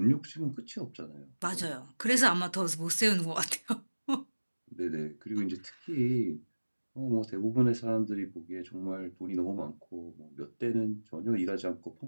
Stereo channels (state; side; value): inverted; both; correlation -1.00